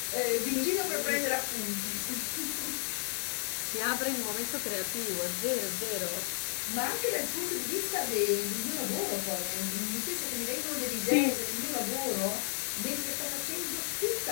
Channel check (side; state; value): right; silent; 56 dB below the other